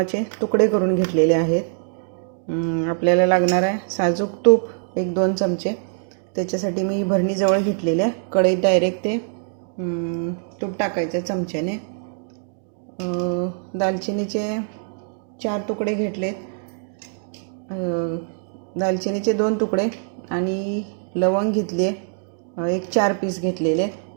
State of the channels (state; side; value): silent; left; digital silence